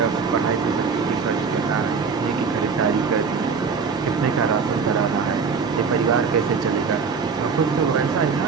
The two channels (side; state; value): left; quieter; 5.4 dB